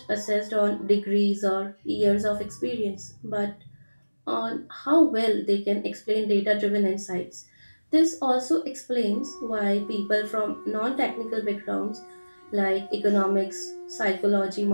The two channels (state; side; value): inverted; both; correlation -1.00